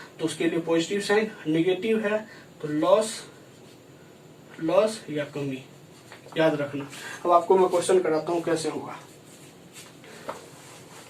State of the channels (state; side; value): identical; both; correlation 1.00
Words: तो उसके लिए पॉजिटिव साइन, नेगेटिव है तो लॉस या कमी, याद रखना। अब आपको मैं क्वेश्चन कराता हूँ कैसे होगा।